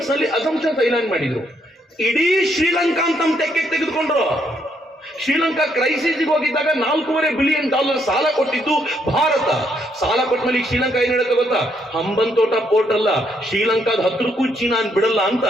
ನಲ್ಲಿ ಅಸಂಪ್ಷನ್ಸ್ ಐಲ್ಯಾಂಡ್ ಮಾಡಿದ್ರು. ಇಡೀ ಶ್ರೀಲಂಕಾ ಅಂತ ತೆಕ್ಕೆ ತೆಗೆದುಕೊಂಡ್ರು. ಶ್ರೀಲಂಕಾ ಕ್ರೈಸಿಸ್ಗೆ ಹೋಗಿದ್ದಾಗ $4.5 ಬಿಲಿಯನ್ ಸಾಲ ಕೊಟ್ಟಿದ್ದು ಭಾರತ. ಸಾಲ ಕೊಟ್ಟ ಮೇಲೆ ಶ್ರೀಲಂಕಾ ಏನ್ ಹೇಳುತ್ತೆ ಗೊತ್ತಾ, ಹಂಬನ್ ತೋಟ ಪೋರ್ಟ್ ಅಲ್ಲ, ಶ್ರೀಲಂಕಾದ ಹತ್ರಕ್ಕೂ ಚೀನಾ ಬಿಡಲ್ಲ ಅಂತ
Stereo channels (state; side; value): normal; both; correlation 0.73